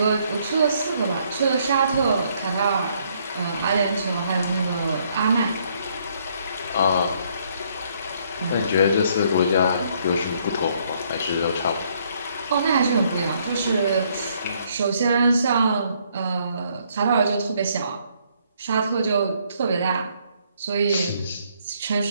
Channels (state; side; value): inverted; both; correlation -0.68